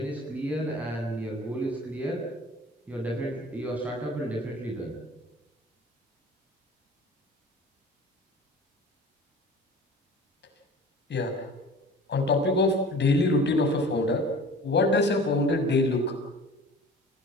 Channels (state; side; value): normal; both; correlation 0.43